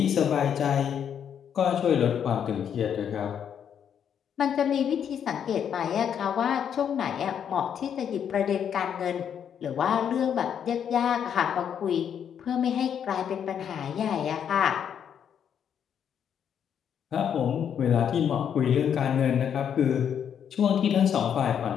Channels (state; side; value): quieter; right; 8.4 dB